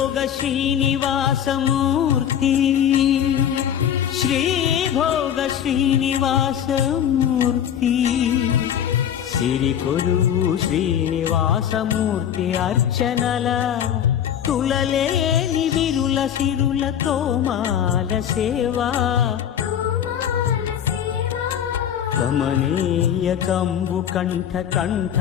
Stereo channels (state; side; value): quieter; right; 9.5 dB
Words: శ్రీనివాసమూర్తి శ్రీభోగ శ్రీనివాసమూర్తి సిరికొలువు శ్రీనివాసమూర్తి అర్చనల తులలేని విరుల సిరుల తోమాల సేవా కమనీయ కంబు కంఠ